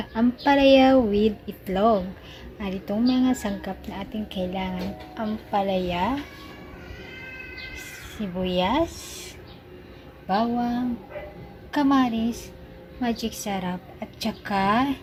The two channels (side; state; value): both; identical; correlation 1.00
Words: ampalaya with itlog. At itong mga sangkap na ating kailangan: ampalaya, sibuyas, bawang, kamaris, magic sarap, at saka